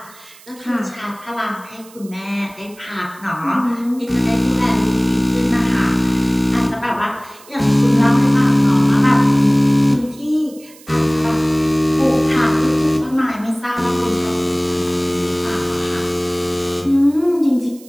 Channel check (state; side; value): noise; right; hiss, 23 dB below the sound